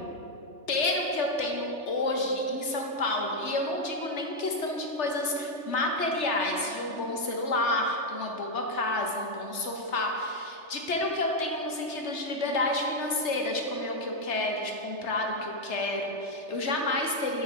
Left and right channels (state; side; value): late; right; 3.3 ms